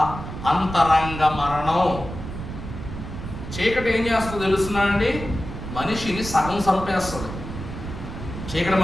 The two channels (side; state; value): right; noise; rumble, 9 dB below the sound